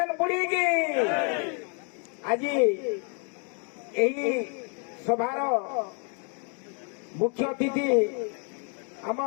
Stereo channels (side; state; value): right; quieter; 39.5 dB